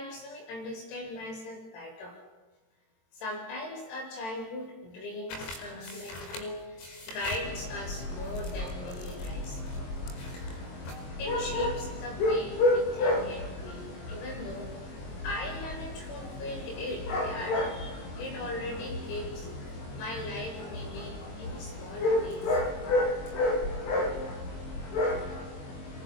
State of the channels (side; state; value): right; late; 22 ms